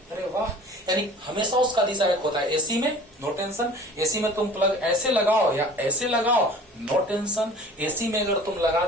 अरे वाह, यानी हमेशा उसका दिशा एक होता है। एसी में नो टेंशन, एसी में तुम प्लग ऐसे लगाओ या ऐसे लगाओ, नो टेंशन। एसी में अगर तुम लगा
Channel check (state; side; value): normal; both; correlation 0.45